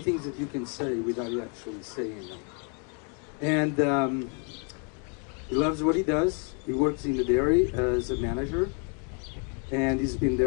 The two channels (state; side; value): quieter; right; 38.9 dB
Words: things that you can say without actually saying them. And he loves what he does. He works in the dairy as a manager, and he's been